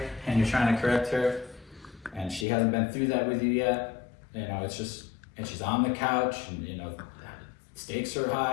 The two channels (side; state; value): right; drops out; at 2.5 s